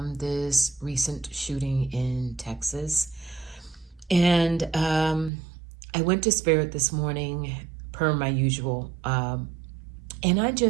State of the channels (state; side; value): drops out; left; at 5.3 s